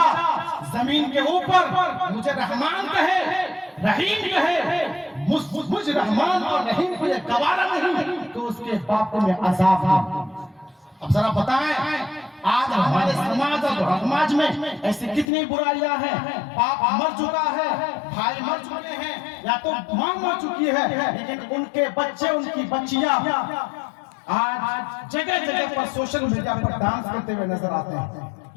زمین کے اوپر مجھے رحمان کہے، رحیم کہے، مجھ رحمان اور رحیم کو یہ گوارا نہیں تو اس کے باپ کو میں عذاب دوں۔ اب ذرا بتائیں آج ہمارے سماج اور سماج میں ایسی کتنی برائیاں ہیں، باپ مر چکا ہے، بھائی مر چکے ہیں، یا تو ماں مر چکی ہے، لیکن ان کے بچے، ان کی بچیاں آج جگہ جگہ پر سوشل میڈیا پر ڈانس کرتے ہوئے نظر آتے ہیں۔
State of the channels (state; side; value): drops out; right; at 15.2 s